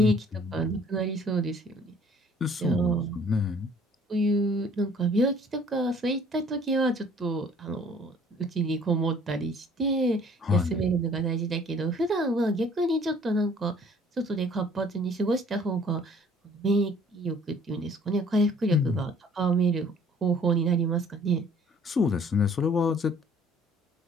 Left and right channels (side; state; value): both; normal; correlation 0.55